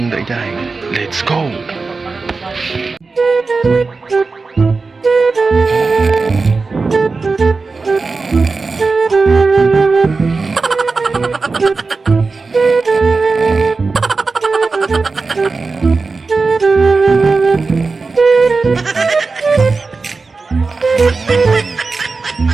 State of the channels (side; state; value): left; quieter; 4.1 dB